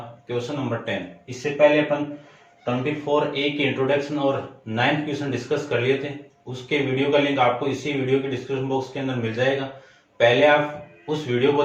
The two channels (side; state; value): both; identical; correlation 1.00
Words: क्वेश्चन नंबर 10। इससे पहले अपन 24A की इंट्रोडक्शन और 9th क्वेश्चन डिस्कस कर लिए थे। उसके वीडियो का लिंक आपको इसी वीडियो के डिस्क्रिप्शन बॉक्स के अंदर मिल जाएगा। पहले आप उस वीडियो को